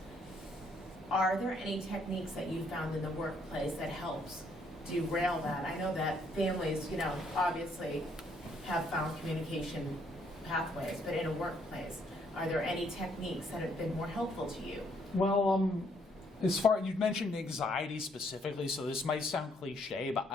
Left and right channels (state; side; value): normal; both; correlation 0.69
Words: Are there any techniques that you found in the workplace that helps derail that? I know that families, obviously have found communication pathways, but in a workplace, are there any techniques that have been more helpful to you? Well, as far you mentioned anxiety specifically, so this might sound cliche, but